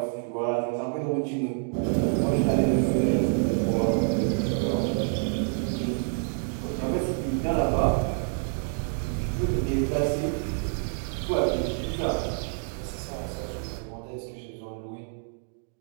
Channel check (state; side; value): silent; left; 60 dB below the other